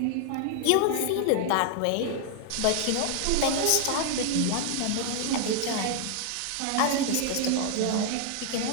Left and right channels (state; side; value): different; both; correlation 0.00